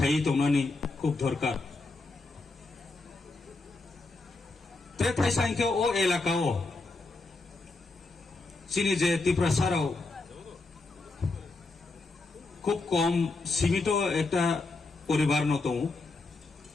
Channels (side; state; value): right; quieter; 3.4 dB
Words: তংনানি খুব দরকার তে থাই সাইকে ও এলাকাও চিনি যে ত্রিপুরাসারাও খুব কম সীমিত একটা পরিবার ন দं